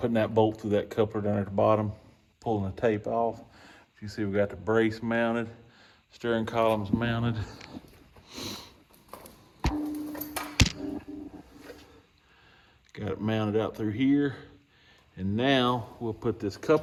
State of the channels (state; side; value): identical; both; correlation 1.00